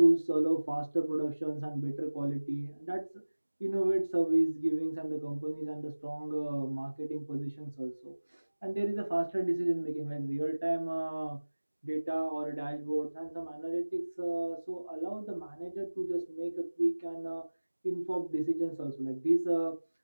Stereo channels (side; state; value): both; inverted; correlation -1.00